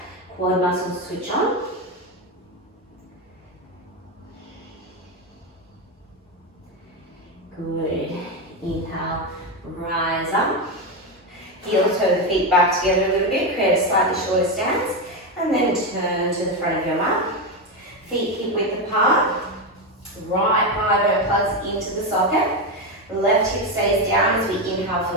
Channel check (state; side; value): normal; both; correlation 0.11